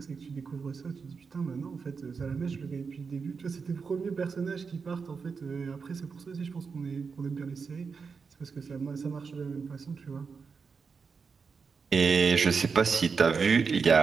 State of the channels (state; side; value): quieter; left; 5.3 dB